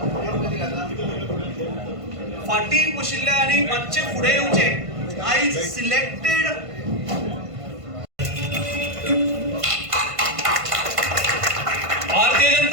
फाटी बशिल्ले आनी मातशे फुडें येवचे. आयज सिलेक्टेड भारतीय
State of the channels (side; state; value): left; late; 1.5 ms